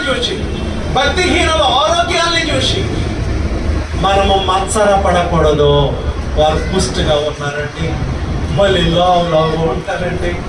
చూచి, భక్తిహీనుల ఆరోగ్యాన్ని చూసి మనము మత్సరపడకూడదు. వారు పుష్టిగా ఉన్నారండి, భలే లావు ఉంటారండి,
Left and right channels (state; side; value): identical; both; correlation 1.00